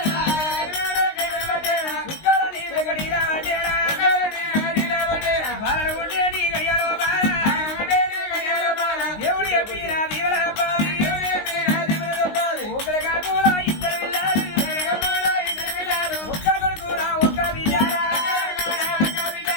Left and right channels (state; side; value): late; right; 19 ms